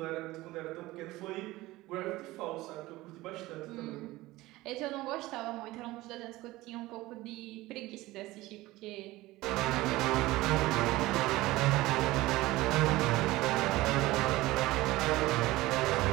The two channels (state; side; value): quieter; left; 18.6 dB